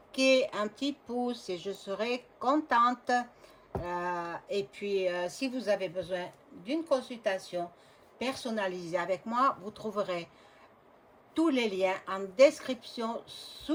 un petit pouce et je serai contente. Et puis, si vous avez besoin d'une consultation personnalisée avec moi, vous trouverez tous les liens en description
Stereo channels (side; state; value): both; identical; correlation 1.00